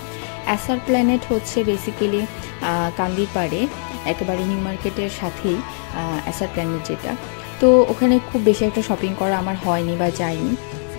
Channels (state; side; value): silent; right; 55 dB below the other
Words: এসআর প্ল্যানেট বেসিক্যালি কান্দির পাড়ে একেবারে নিউ মার্কেটের সাথেই এসআর প্ল্যানেট যেটা। তো ওখানে খুব বেশি একটা শপিং করা আমার হয়নি বা যাইনি।